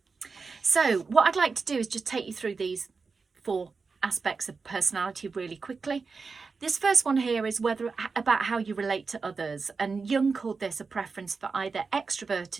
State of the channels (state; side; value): quieter; left; 4.7 dB